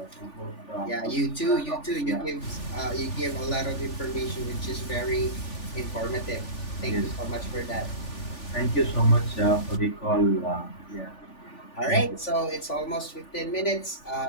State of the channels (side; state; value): right; late; 3.4 ms